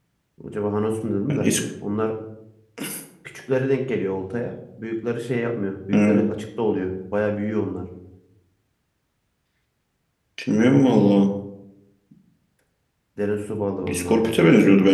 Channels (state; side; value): identical; both; correlation 1.00